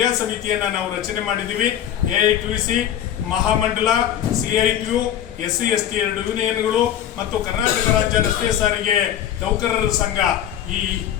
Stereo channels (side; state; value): right; quieter; 10.5 dB